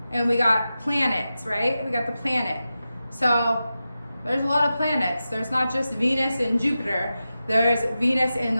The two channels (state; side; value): inverted; both; correlation -0.92